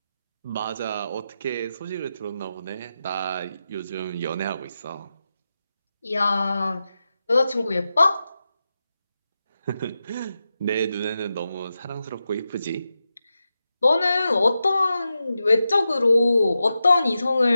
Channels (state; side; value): inverted; both; correlation -0.90